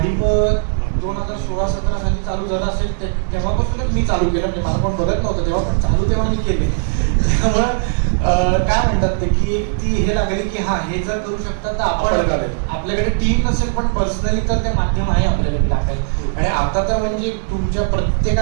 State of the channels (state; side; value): silent; left; digital silence